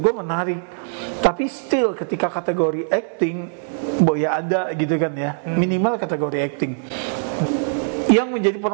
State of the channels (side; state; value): left; silent; digital silence